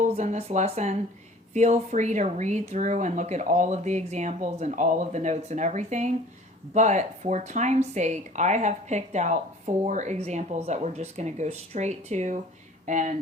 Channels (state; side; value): normal; both; correlation 0.49